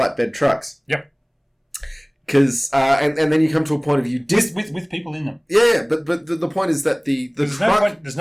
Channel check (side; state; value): both; identical; correlation 1.00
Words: trucks. Yep. Because and then you come to a point of with people in them. Yeah, but the point is that there's